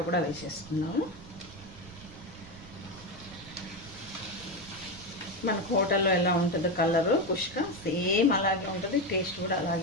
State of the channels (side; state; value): right; noise; rumble, 18 dB below the sound